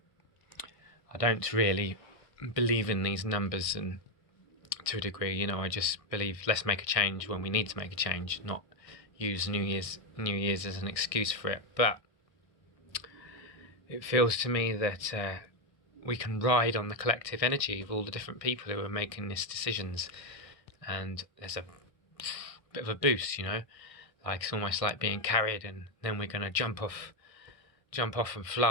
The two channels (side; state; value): right; late; 1.5 ms